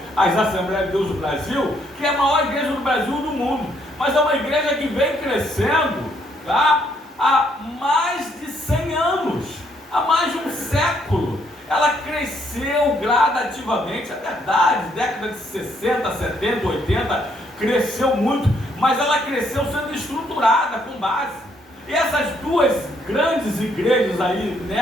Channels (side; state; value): both; normal; correlation 0.70